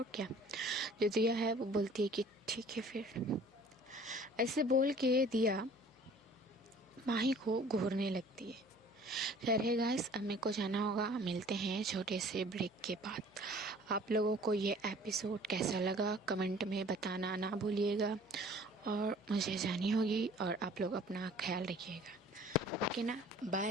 क्या। जो दिया है वो बोलती है कि ठीक है फिर। ऐसे बोल के दिया माही को घूरने लगती है। खैर है गाइस, अब मेरे को जाना होगा, मिलते हैं छोटे से ब्रेक के बाद। आप लोगों को ये एपिसोड कैसा लगा कमेंट में बताना ना भूलिएगा और मुझे जानी होगी और आप लोग अपना ख्याल रखिएगा। ओके ना, बाय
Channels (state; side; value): noise; left; hum, 29 dB below the sound